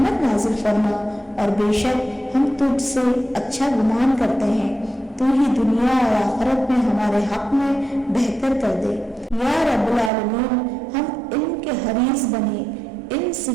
نازل فرما، اور بے شک ہم تجھ سے اچھا گمان کرتے ہیں، تو ہی دنیا اور آخرت میں ہمارے حق میں بہتر کر دے۔ یا رب العالمین، ہم علم کے حریص بنے، علم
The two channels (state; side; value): drops out; left; at 10.1 s